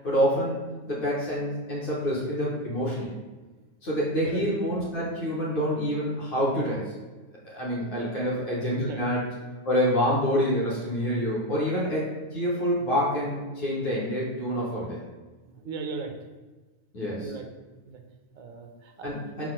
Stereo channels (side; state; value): right; late; 9.5 ms